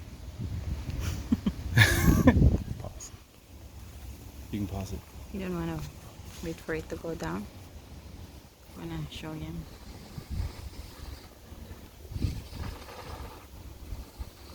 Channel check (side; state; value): both; identical; correlation 1.00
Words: Pause. You can pause it. You don't want to wait for it to go down? I'm gonna show you.